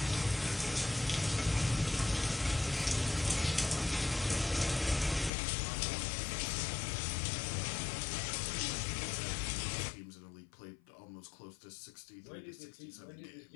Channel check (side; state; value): right; drops out; at 5.3 s